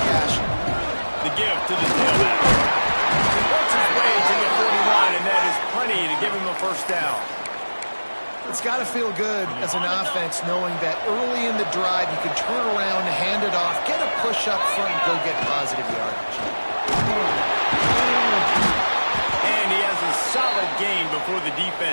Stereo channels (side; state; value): both; inverted; correlation -1.00